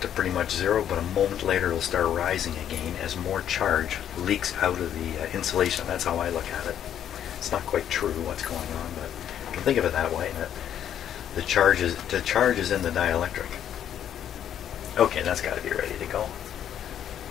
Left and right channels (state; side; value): quieter; right; 10.0 dB